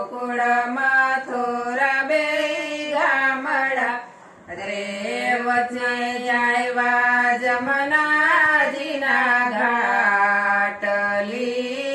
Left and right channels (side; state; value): both; identical; correlation 1.00